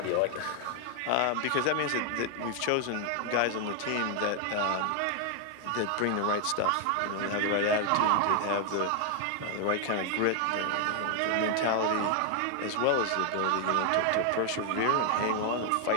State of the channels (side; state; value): both; different; correlation 0.00